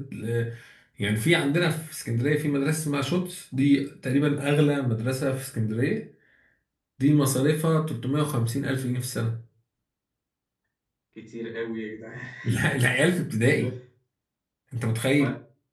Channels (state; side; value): identical; both; correlation 1.00